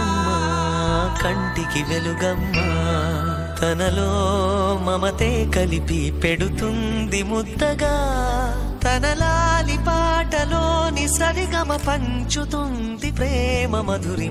కంటికి వెలుగమ్మా. తనలో మమతే కలిపి పెడుతుంది ముద్దగా, తనలాలి పాటలోని సరిగమ పంచుతుంది ప్రేమ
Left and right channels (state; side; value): identical; both; correlation 1.00